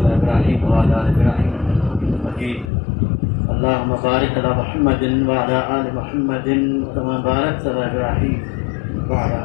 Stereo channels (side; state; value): right; drops out; at 2.7 s